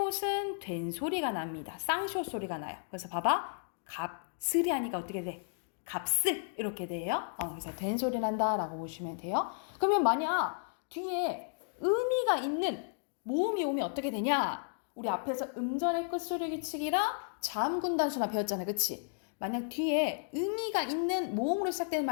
된 소리가 납니다. 쌍시옷 소리가 나요. 그래서 봐봐. 값을이 하니까 어떻게 돼? 값을 이렇게 돼요. 그래서 된 소리 난다라고 보시면 돼요. 그러면 만약 뒤에 의미가 있는 모음이 오면 어떻게 되냐? 우리 앞에서 음절의 끝소리 규칙이랑 자음군 단순화 배웠잖아요. 그치? 만약 뒤에 의미가 있는 모음으로 시작되는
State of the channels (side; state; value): right; silent; digital silence